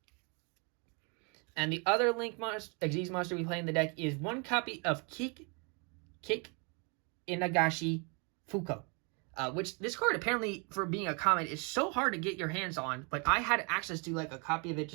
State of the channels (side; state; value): left; quieter; 34.2 dB